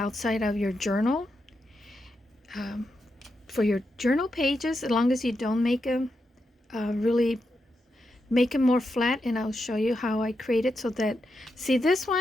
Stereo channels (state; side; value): normal; both; correlation 0.86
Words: of your journal. For your journal pages, as long as you don't make them really make them more flat, and I'll show you how I create it so that, see this